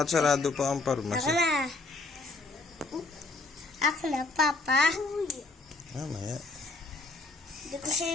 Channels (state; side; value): quieter; right; 3.3 dB